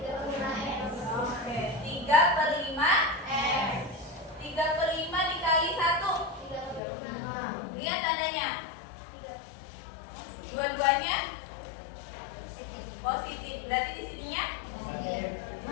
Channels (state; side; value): drops out; right; at 6.8 s